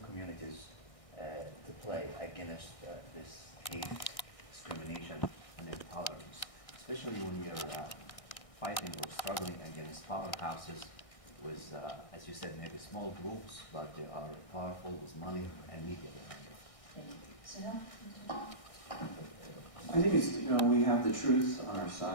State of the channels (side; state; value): right; late; 1.6 ms